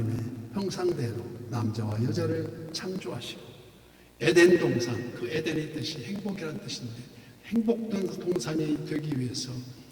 형상대로 남자와 여자를 창조하시고, 에덴 동산, 그 에덴의 뜻이 행복이라는 뜻인데, 행복된 동산이 되기 위해서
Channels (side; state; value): both; identical; correlation 1.00